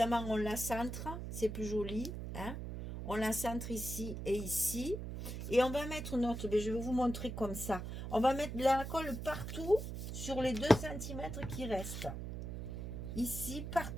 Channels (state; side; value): noise; right; hum, 6 dB below the sound